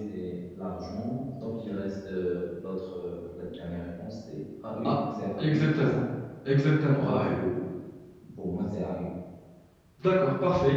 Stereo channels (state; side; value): identical; both; correlation 1.00